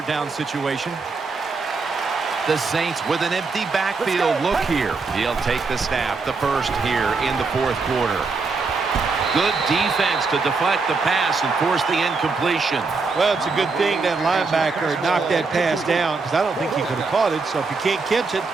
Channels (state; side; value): quieter; left; 4.3 dB